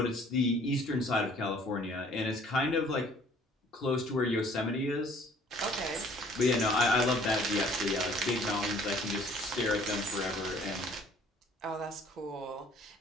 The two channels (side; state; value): both; normal; correlation 0.56